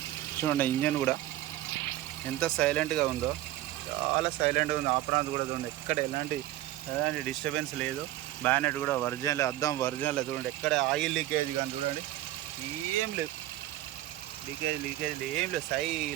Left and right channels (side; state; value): left; quieter; 14.9 dB